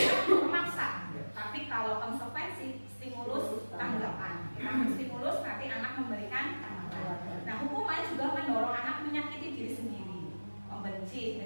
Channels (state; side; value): inverted; both; correlation -1.00